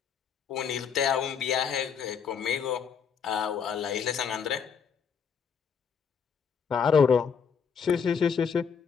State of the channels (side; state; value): right; quieter; 6.7 dB